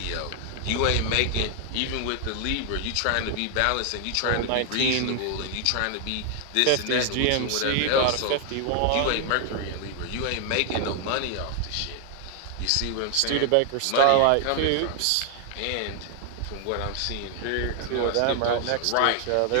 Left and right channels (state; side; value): different; both; correlation 0.00